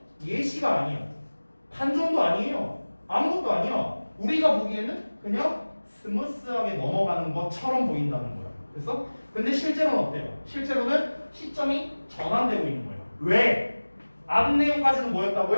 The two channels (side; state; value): both; inverted; correlation -1.00